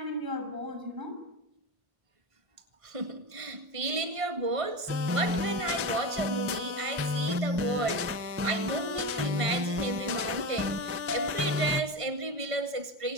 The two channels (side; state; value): left; late; 1.5 ms